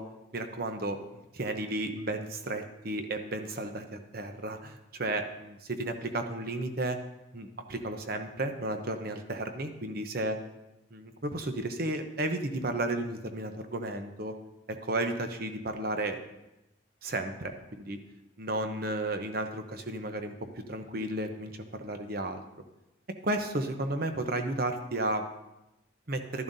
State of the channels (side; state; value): both; normal; correlation 0.15